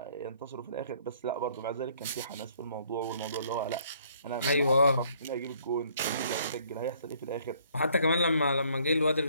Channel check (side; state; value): both; inverted; correlation -0.63